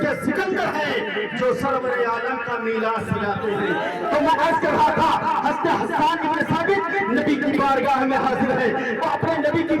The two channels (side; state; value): both; identical; correlation 1.00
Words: کے سکندر ہیں جو سرور عالم کا میلاد سجاتے ہیں تو میں عرض کر رہا تھا حضرت حسان ابن ثابت نبی کی بارگاہ میں حاضر ہے وہ اپنے نبی کی